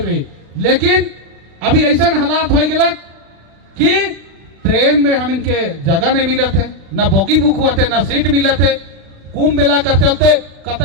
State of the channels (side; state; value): left; late; 36 ms